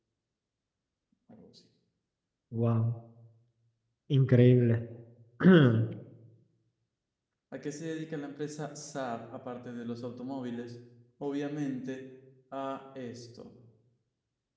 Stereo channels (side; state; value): both; identical; correlation 1.00